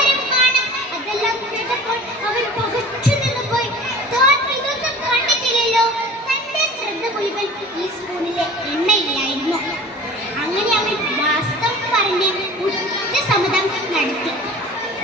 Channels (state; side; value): normal; both; correlation 0.42